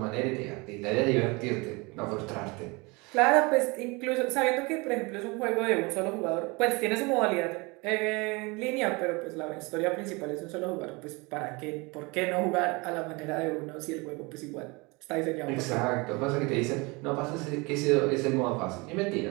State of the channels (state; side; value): quieter; left; 26.6 dB